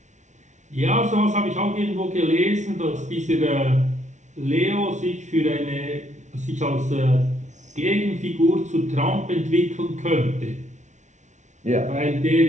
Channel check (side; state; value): left; late; 0.35 ms